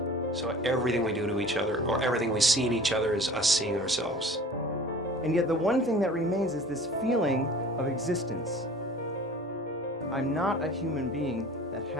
So everything we do to each other, or everything we see in each other, is us seeing ourselves. And yet the one thing that remains is this feeling of existence. I'm not a human being that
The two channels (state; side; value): normal; both; correlation 0.44